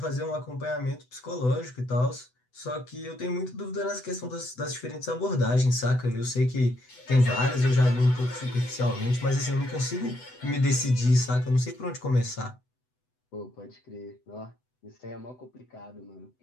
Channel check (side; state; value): right; late; 8.0 ms